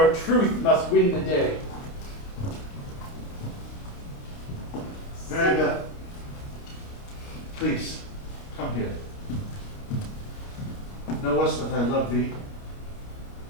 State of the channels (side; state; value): right; late; 29 ms